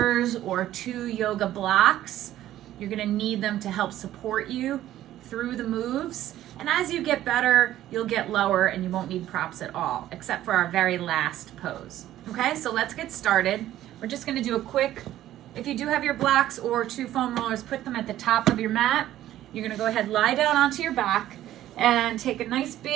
or 2 yoga blocks, you're going to need them to help support you through the moves. And as you get better, you'll get lower and you won't need props at all, except for our very last pose. Okay, so let's get started. We're just gonna do a quick, if you do have your blocks or 2 foam rollers, put them at the top of your mat. You're gonna go ahead, lie down onto your back and take a nice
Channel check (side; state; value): left; quieter; 13.3 dB